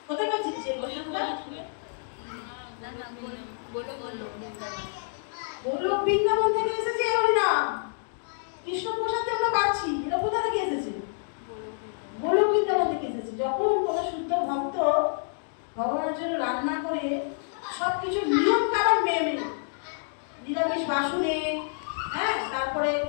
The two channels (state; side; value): silent; right; digital silence